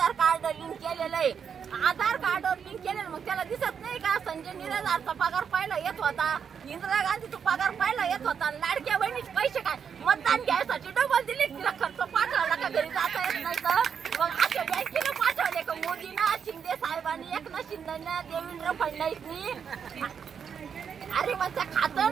कार्ड लिंक केलेलं आहे। आधार कार्ड लिंक केलेलं, मग त्याला दिसत नाही का संजय निराधारचा पगार पहिला येत होता, इंदिरा गांधीचा पगार पहिला येत होता। लाडक्या बहिणीचे पैसे काय मतदान घ्यायसाठी डबल दिले। तिला खर्च पाठवला का घरी जाता येत नाही तर मग अशा बँकेला पाठवले का मोदींना, शिंदे साहेबांनी, एकनाथ शिंदेना, देवेंद्र फडणवीसनी। अरे म्हणजे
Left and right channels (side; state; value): left; quieter; 7.2 dB